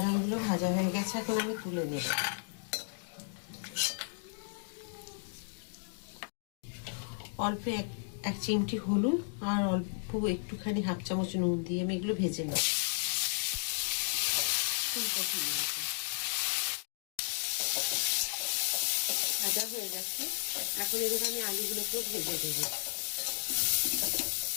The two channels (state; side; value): silent; right; digital silence